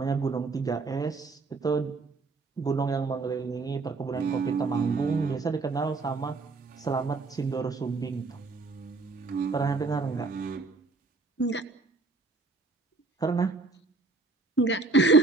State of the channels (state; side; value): quieter; left; 3.7 dB